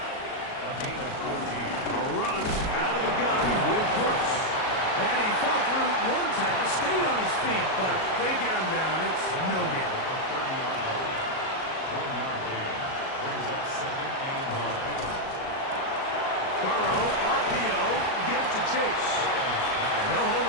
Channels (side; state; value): right; late; 37 ms